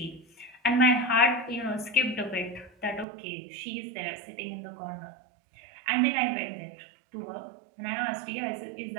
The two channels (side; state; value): left; drops out; at 3.1 s